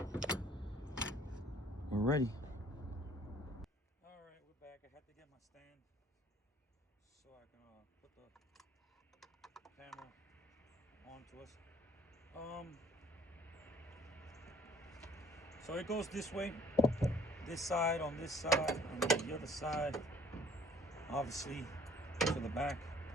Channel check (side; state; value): both; normal; correlation 0.58